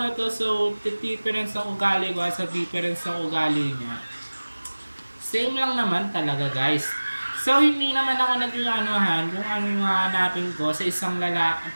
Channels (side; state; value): both; inverted; correlation -1.00